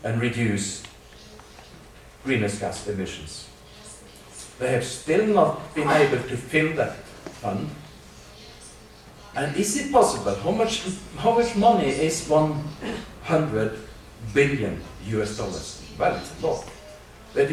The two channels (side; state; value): both; identical; correlation 1.00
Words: and reduce greenhouse gas emissions. They have still not been able to fill that fund. And is it possible? How much money is 100 billion US dollars? Well, it's a lot. But